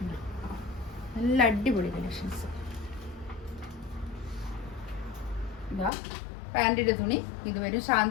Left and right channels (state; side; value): drops out; right; at 5.9 s